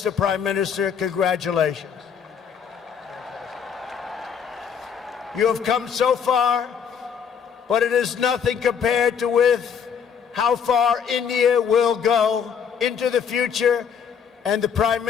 Prime Minister, congratulations. You have come so far, but it is nothing compared to with how far India will go into the future, and the Prime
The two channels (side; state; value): right; quieter; 7.2 dB